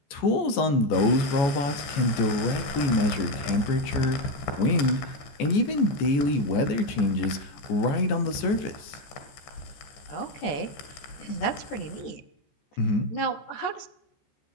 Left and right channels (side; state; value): right; late; 14 ms